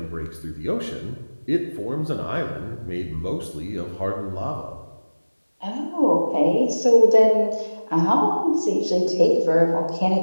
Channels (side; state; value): both; inverted; correlation -1.00